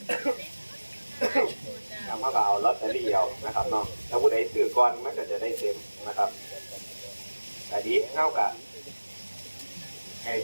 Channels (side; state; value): both; inverted; correlation -1.00